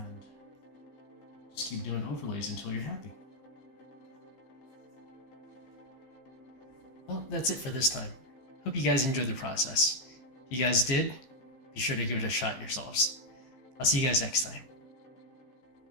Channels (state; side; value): late; right; 15 ms